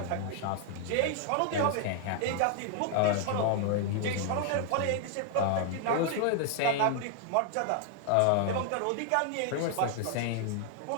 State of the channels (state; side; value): different; both; correlation 0.00